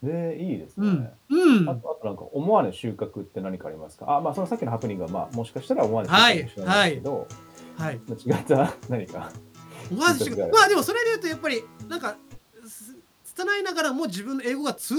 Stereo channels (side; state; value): both; identical; correlation 1.00